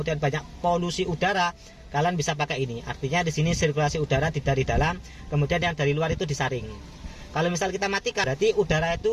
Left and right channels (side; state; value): both; identical; correlation 1.00